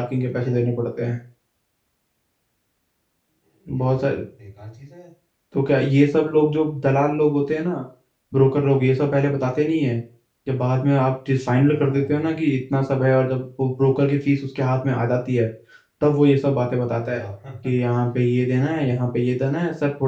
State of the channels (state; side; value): identical; both; correlation 1.00